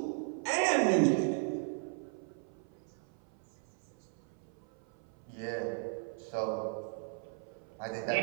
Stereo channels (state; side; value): silent; left; 53 dB below the other